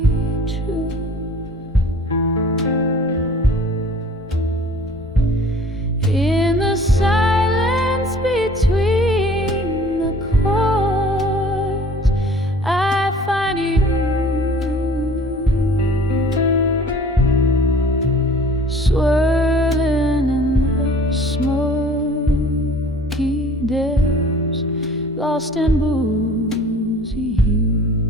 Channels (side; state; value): both; normal; correlation 0.49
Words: truth. In the silence between the chords, I find you swirling in the smoky depths, lost in boozy